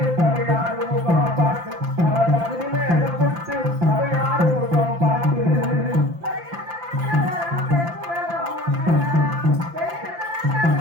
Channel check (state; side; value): late; left; 5.8 ms